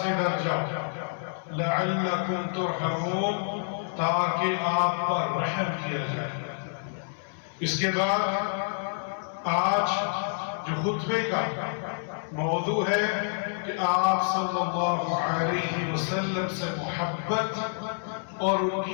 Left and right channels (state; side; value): silent; right; 59 dB below the other